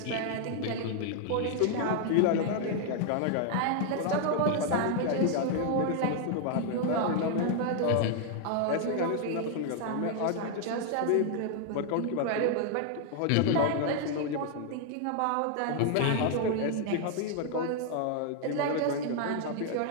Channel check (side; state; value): both; different; correlation 0.00